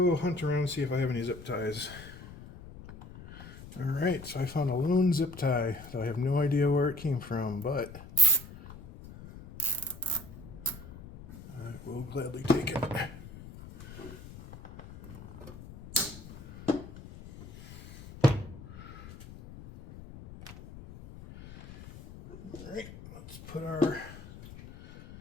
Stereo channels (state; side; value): noise; left; rumble, 15 dB below the sound